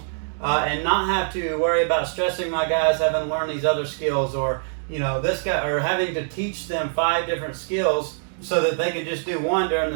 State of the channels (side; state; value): left; silent; digital silence